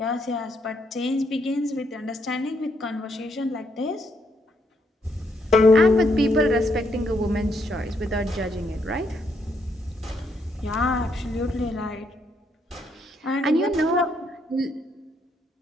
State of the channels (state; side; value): normal; both; correlation 0.75